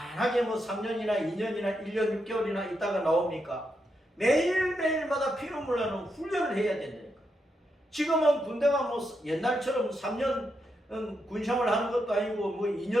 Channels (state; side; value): normal; both; correlation 0.83